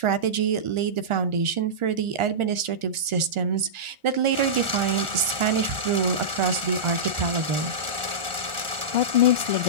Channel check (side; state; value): left; late; 1.4 ms